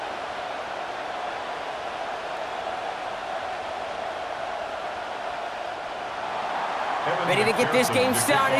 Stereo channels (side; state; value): both; identical; correlation 1.00